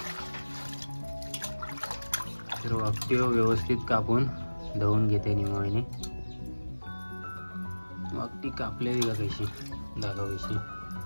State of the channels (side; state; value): both; inverted; correlation -1.00